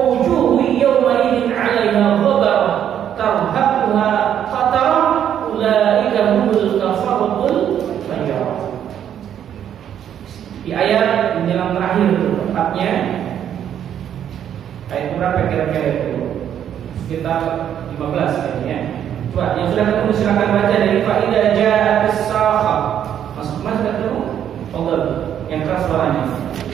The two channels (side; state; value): left; quieter; 9.7 dB